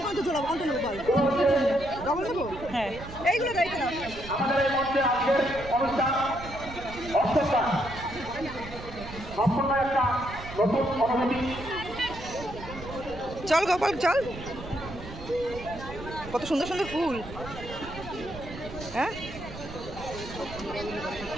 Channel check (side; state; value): right; noise; rumble, 12 dB below the sound